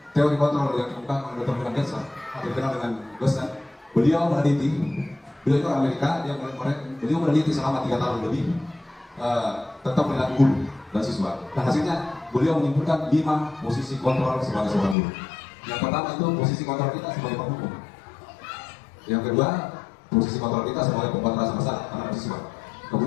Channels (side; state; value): right; drops out; at 15.0 s